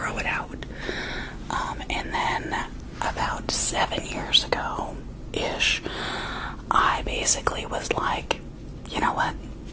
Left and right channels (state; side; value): identical; both; correlation 1.00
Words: it out. And then about 7 years ago-ish, I basically was like, you know what?